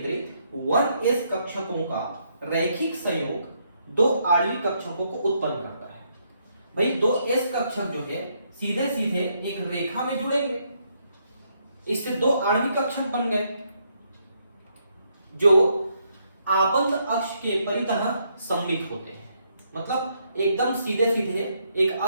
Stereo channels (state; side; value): inverted; both; correlation -0.75